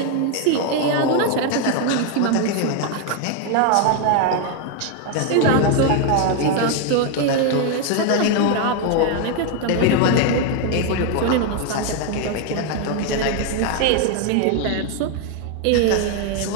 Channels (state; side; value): different; both; correlation 0.01